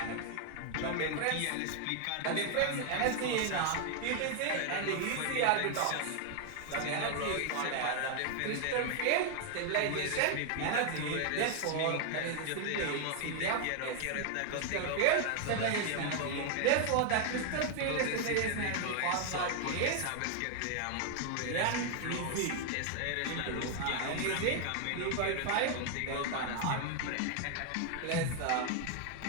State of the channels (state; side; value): different; both; correlation 0.00